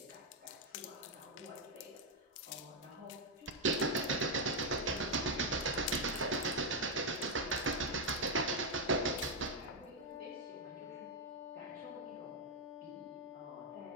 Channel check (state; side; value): normal; both; correlation 0.01